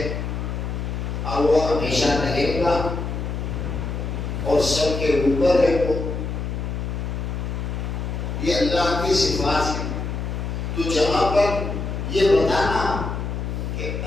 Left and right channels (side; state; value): left; noise; hum, 3 dB below the sound